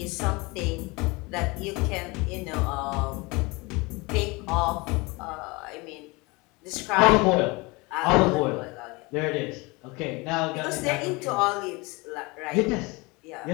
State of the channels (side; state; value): right; quieter; 25.3 dB